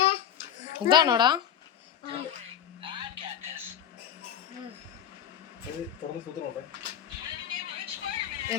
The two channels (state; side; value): quieter; right; 9.8 dB